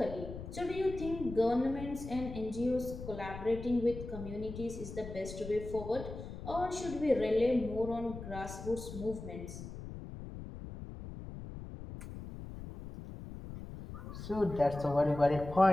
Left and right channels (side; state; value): left; noise; rumble, 10 dB below the sound